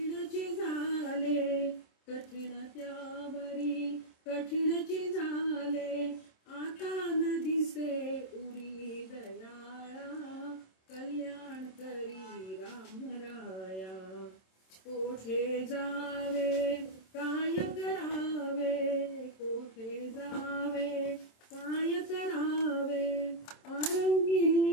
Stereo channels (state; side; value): late; right; 27 ms